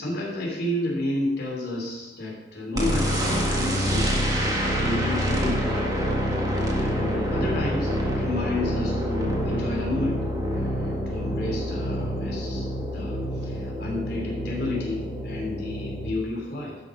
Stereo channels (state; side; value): normal; both; correlation 0.68